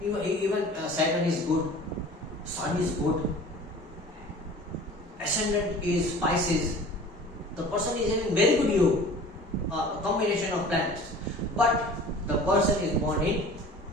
Even Saturn is good, Sun is good, Ascendant is Pisces. The person is having very good yoga, combination of planets. But the person is born in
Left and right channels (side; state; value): both; normal; correlation 0.43